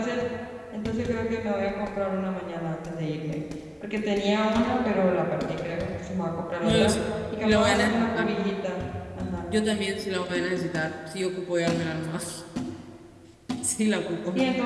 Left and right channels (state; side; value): identical; both; correlation 1.00